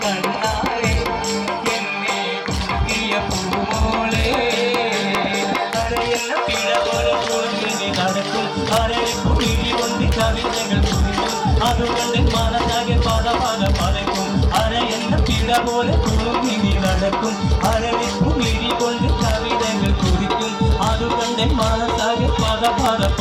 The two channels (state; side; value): identical; both; correlation 1.00